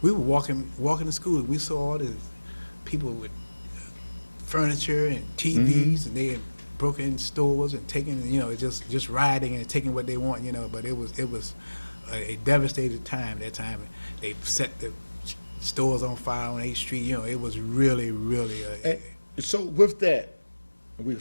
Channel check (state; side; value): inverted; both; correlation -1.00